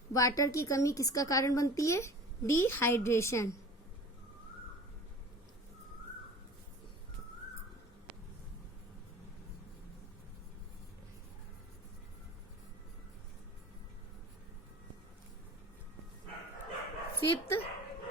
वाटर की कमी किसका कारण बनती है? Dehydration. Fifth,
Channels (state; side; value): normal; both; correlation 0.40